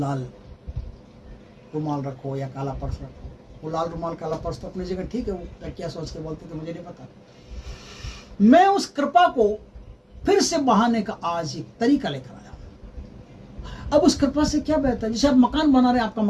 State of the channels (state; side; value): identical; both; correlation 1.00